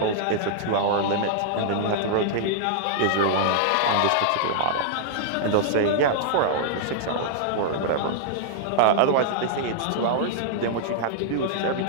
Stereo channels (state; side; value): different; both; correlation -0.01